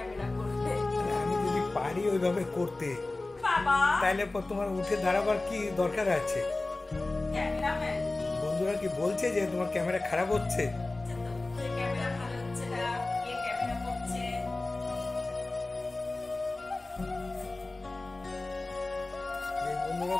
করবে। আমি যদি পারি ওইভাবে করতে, বাবা তাহলে তোমার উঠে দাঁড়াবার কি দরকার আছে? ক্যামেরাম্যান বন্ধুরা কি বলছে যে তোমার ক্যামেরা খারাপ হচ্ছে? ক্যামেরা ভালো হচ্ছে না, কে ক্যামেরা করছে? যে বন্ধুরা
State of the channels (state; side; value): quieter; right; 3.1 dB